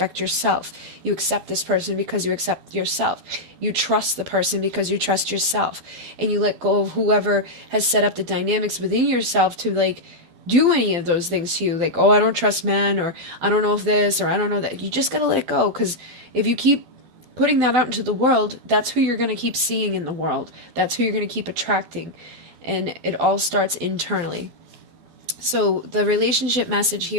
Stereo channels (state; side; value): late; left; 12 ms